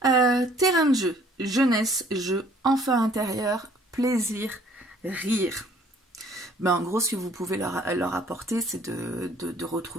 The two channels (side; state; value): both; normal; correlation 0.58